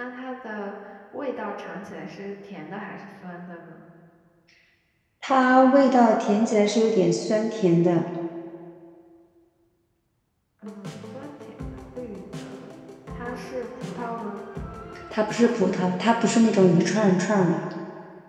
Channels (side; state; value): both; identical; correlation 1.00